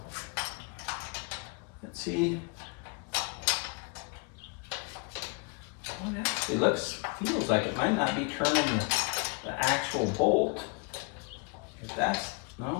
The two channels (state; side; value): quieter; right; 33.4 dB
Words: Let's see. Well, it actually feels like it might not be turning the actual bolt. If that's,